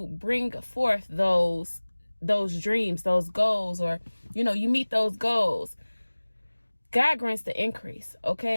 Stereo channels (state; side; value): inverted; both; correlation -1.00